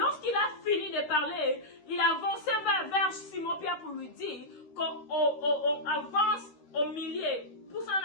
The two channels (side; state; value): right; late; 13 ms